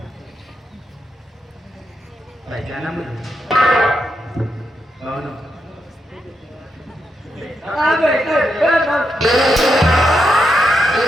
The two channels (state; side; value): normal; both; correlation 0.83